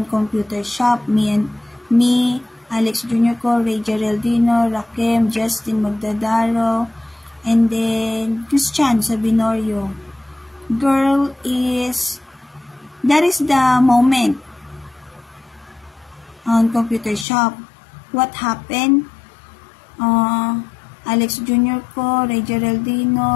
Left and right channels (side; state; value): right; drops out; at 17.2 s